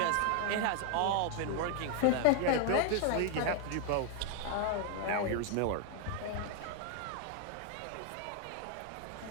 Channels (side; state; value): both; different; correlation 0.00